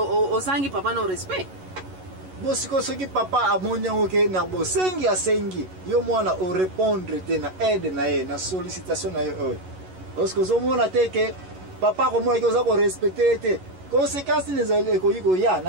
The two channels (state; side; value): late; left; 11 ms